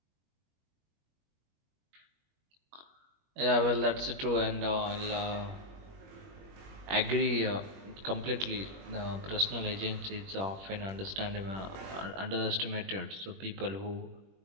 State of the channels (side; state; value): left; late; 21 ms